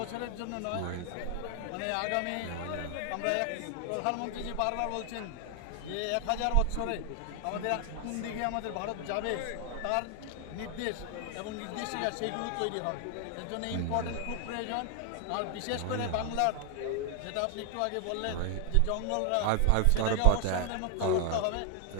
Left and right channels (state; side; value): different; both; correlation 0.00